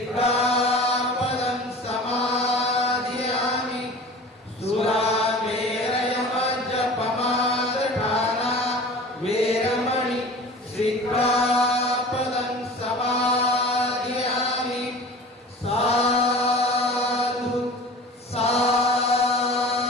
समादयामि सुरामेरयमज्जपमादठाना वेरमणि सिक्खापदं समादयामि साधु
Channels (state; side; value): normal; both; correlation 0.40